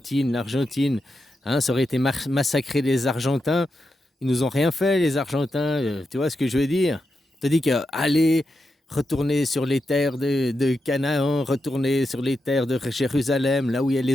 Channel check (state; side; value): normal; both; correlation 0.87